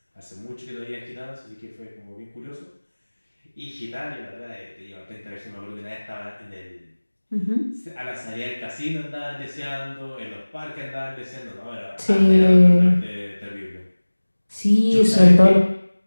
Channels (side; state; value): both; inverted; correlation -1.00